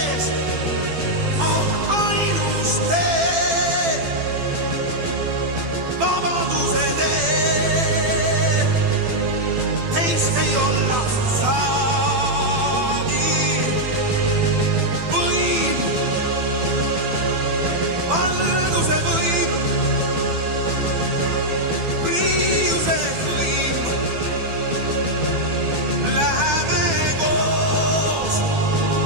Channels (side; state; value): left; late; 12 ms